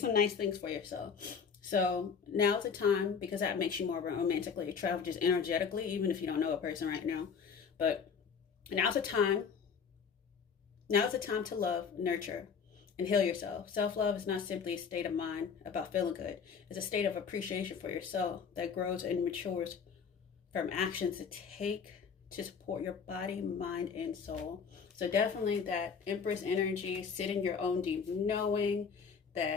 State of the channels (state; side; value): quieter; right; 6.2 dB